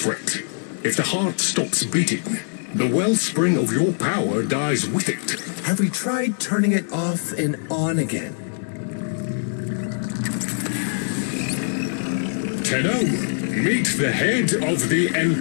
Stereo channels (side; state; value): right; silent; digital silence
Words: If the heart stops beating, the wellspring of your power dies with it. Have we tried turning it off and on again? Tenno, meet the head of the